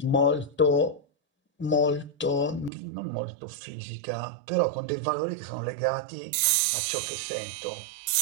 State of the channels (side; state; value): left; drops out; at 2.7 s